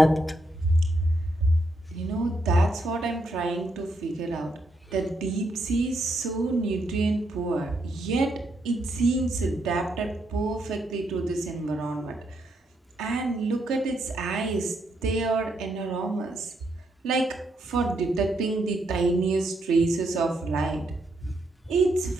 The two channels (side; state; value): both; normal; correlation 0.78